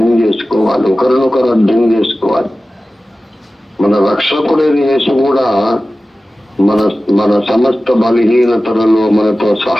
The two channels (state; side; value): normal; both; correlation 0.96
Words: చేసుకోవాలి, ఒకరినొకరు అర్థం చేసుకోవాలి. మన రక్షకుడైన యేసు కూడా మన సమస్త బలహీనతలలో మనతో